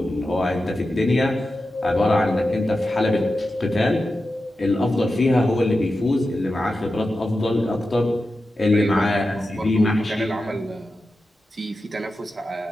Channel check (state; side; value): normal; both; correlation 0.92